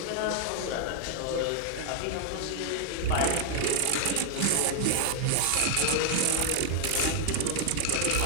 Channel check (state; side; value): different; both; correlation 0.00